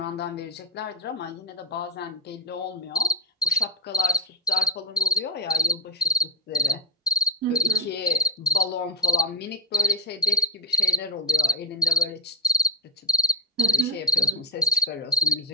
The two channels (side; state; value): both; normal; correlation 0.14